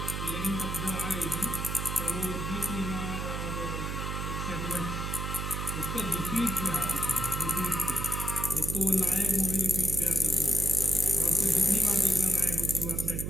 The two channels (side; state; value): right; noise; hum, 3 dB below the sound